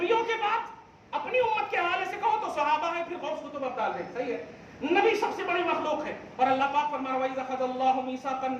کے بعد اپنی امت کے حوالے سے کہو تو صحابہ ہیں، پھر غوث قطب ابدال ہیں. صحیح ہے، نبی سب سے بڑی مخلوق ہے. اور اللہ پاک فرما رہا ہے وَإِذْ أَخَذَ اللَّهُ مِيثَاقَ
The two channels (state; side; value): identical; both; correlation 1.00